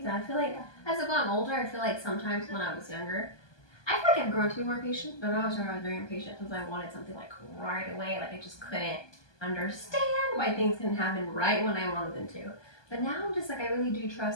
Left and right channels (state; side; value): late; right; 1.2 ms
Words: that. I feel like as I've gotten older, I feel like sometimes when I was younger, I feel like I've grown to be more patient, but when I was younger, I was very impatient because I wanted something like right away. Like I just couldn't understand why things couldn't happen right when I wanted them to. But now I'm just like, I really do